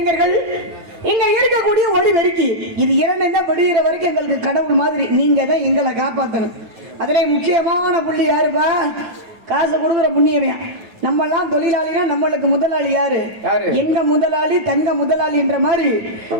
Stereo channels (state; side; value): late; left; 9.3 ms